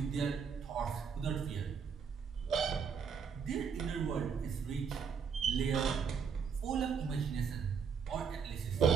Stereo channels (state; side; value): quieter; left; 6.4 dB